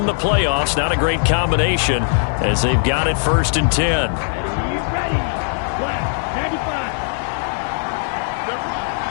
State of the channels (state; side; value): silent; right; digital silence